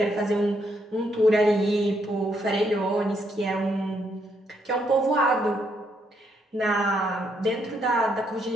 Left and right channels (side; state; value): both; normal; correlation 0.75